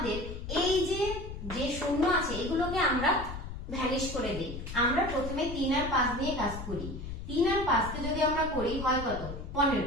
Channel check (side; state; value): left; noise; rumble, 8 dB below the sound